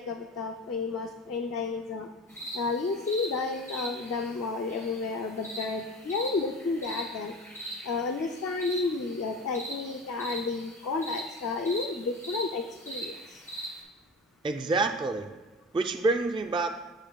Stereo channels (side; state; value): both; normal; correlation 0.32